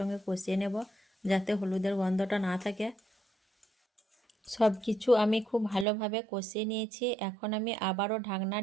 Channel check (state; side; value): drops out; left; at 5.9 s